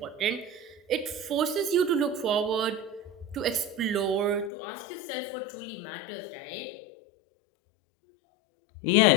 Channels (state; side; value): drops out; right; at 4.5 s